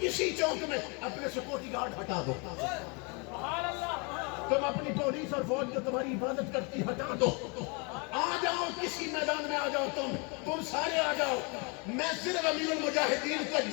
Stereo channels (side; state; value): right; quieter; 32.4 dB